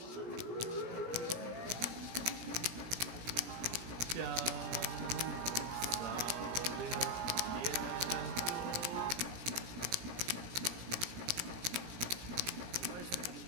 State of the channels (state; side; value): late; left; 17 ms